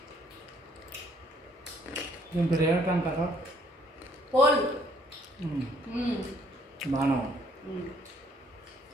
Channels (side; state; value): both; normal; correlation 0.64